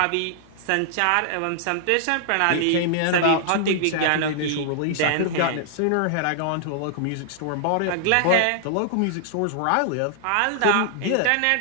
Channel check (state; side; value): different; both; correlation -0.01